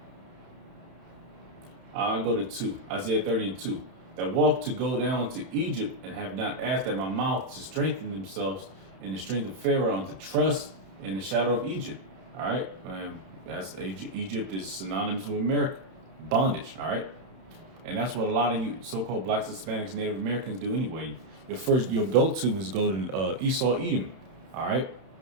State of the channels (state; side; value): late; left; 31 ms